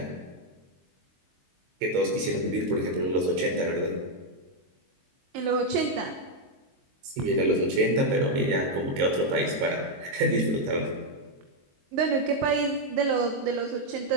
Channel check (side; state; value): left; late; 22 ms